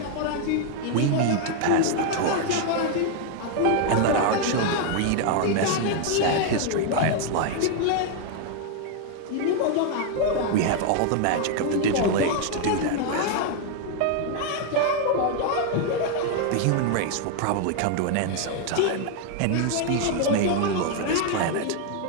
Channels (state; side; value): different; both; correlation 0.00